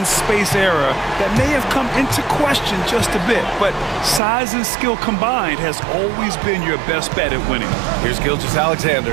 space era, that may have come into question just a bit, but size and skill combined has always been your best bet at winning. Here's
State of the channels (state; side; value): drops out; left; at 4.2 s